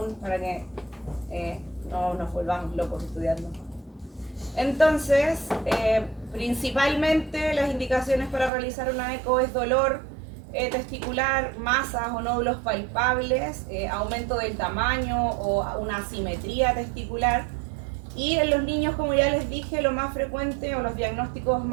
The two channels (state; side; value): drops out; left; at 8.5 s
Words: para que no nos volvamos locos estudiando. Entonces, principalmente las indicaciones para realizar una eco es dolor testicular, masas o nódulos palpables, aumento del tamaño o una asimetría testicular. Y en los niños, como ya les dije, lo más frecuente o los diagnósticos